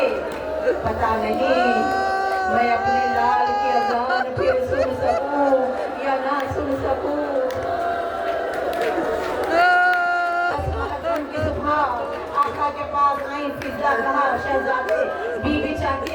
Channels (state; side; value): identical; both; correlation 1.00